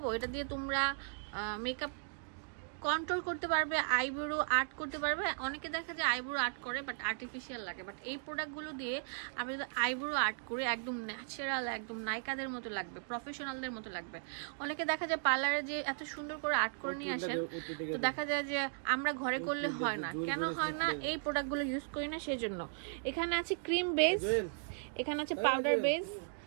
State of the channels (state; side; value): silent; left; digital silence